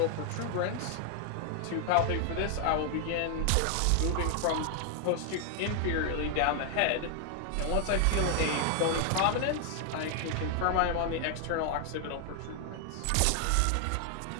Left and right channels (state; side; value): different; both; correlation 0.00